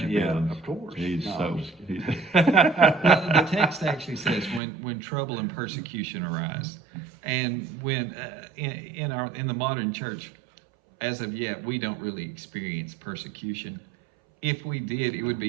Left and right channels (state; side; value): drops out; left; at 4.6 s